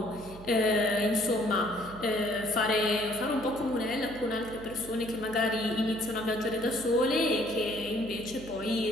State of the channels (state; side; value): noise; right; hum, 16 dB below the sound